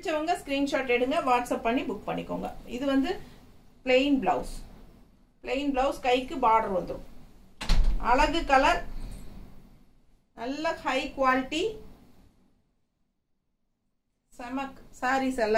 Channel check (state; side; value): identical; both; correlation 1.00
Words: ஸ்க்ரீன்ஷாட் எடுங்க, வாட்ஸ்அப் பண்ணி புக் பண்ணிக்கோங்க. இது வந்து பிளெயின் ப்ளவுஸ், கைக்கு பார்டர் வந்துடும். அழகு கலர், நல்ல ஹை குவாலிட்டி செமக் சாரீஸ்